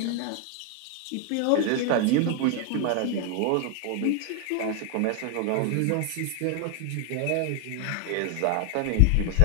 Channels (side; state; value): both; different; correlation 0.01